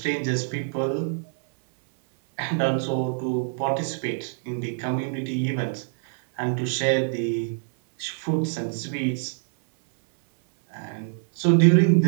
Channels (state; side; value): silent; left; 62 dB below the other